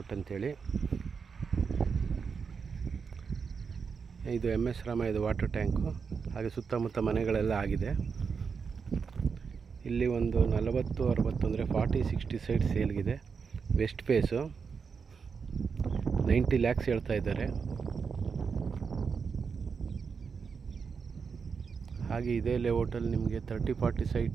ಅಂತೇಳಿ. ಇದು MS ರಾಮಯ್ಯದ ವಾಟರ್ ಟ್ಯಾಂಕು. ಹಾಗೆ ಸುತ್ತಮುತ್ತ ಮನೆಗಳೆಲ್ಲ ಆಗಿದೆ. ಇಲ್ಲಿ ಒಂದು 40-60 ಅಂದರೆ 40-60 ಸೈಟ್ ಸೇಲ್ಗಿದೆ. ವೆಸ್ಟ್ ಫೇಸು 90 lakhs ಹೇಳ್ತಾ ಇದ್ದಾರೆ. ಹಾಗೆ ಇದೇ ಲೇಔಟಲ್ಲಿ ನಿಮಗೆ 30-40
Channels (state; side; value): quieter; left; 5.7 dB